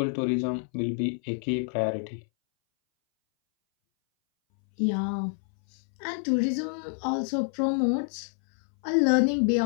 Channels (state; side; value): silent; right; 60 dB below the other